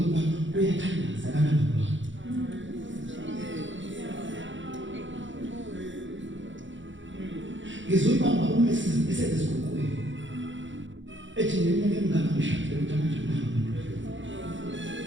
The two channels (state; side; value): late; left; 0.55 ms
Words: uyathandaza kana baba. Ngizoyibamba uma esezisikhukhweni. Ethi neminyaka emingaka ngishadile ukuthi manje